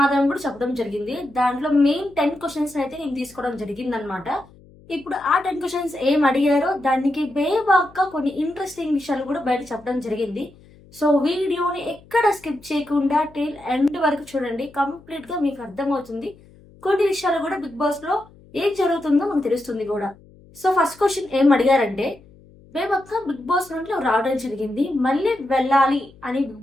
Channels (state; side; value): noise; left; hum, 25 dB below the sound